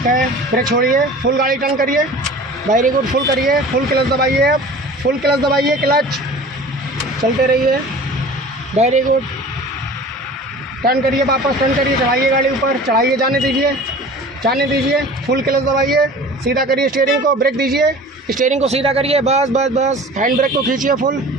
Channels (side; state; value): both; normal; correlation 0.41